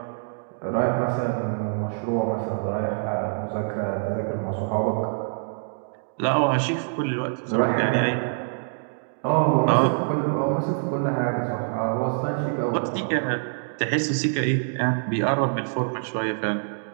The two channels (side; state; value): left; silent; digital silence